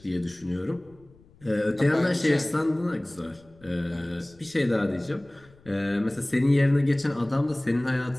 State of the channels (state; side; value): noise; left; rumble, 28 dB below the sound